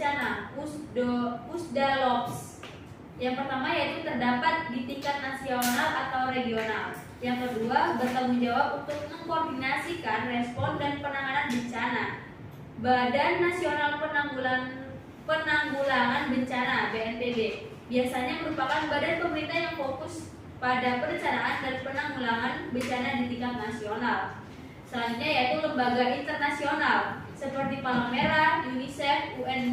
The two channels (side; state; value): both; identical; correlation 1.00